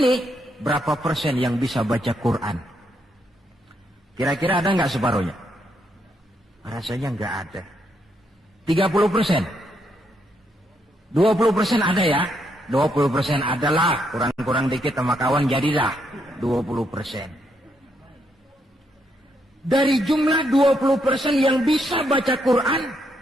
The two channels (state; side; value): normal; both; correlation 0.77